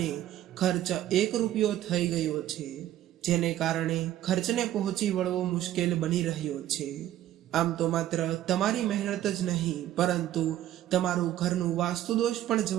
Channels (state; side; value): quieter; left; 12.9 dB